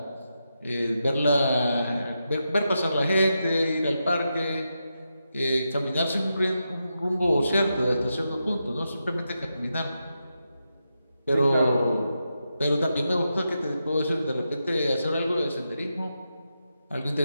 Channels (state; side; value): inverted; both; correlation -0.87